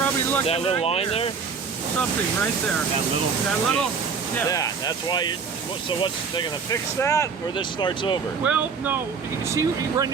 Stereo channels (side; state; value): left; quieter; 5.7 dB